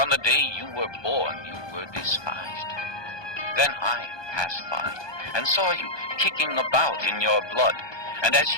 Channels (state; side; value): late; right; 1.2 ms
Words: the day you were born, you were despised. Then I passed by, and saw you kicking about in your blood. And as